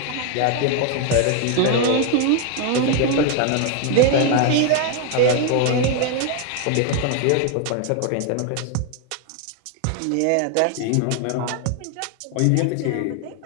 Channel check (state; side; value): different; both; correlation 0.01